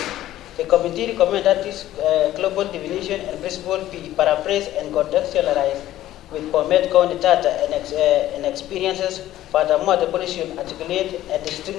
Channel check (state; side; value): quieter; right; 13.9 dB